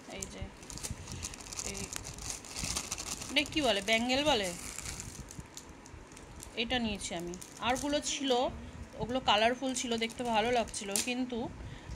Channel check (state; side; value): identical; both; correlation 1.00